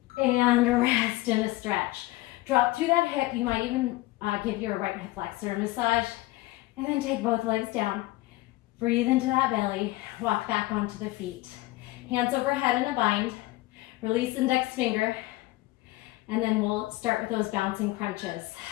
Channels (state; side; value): quieter; right; 19.1 dB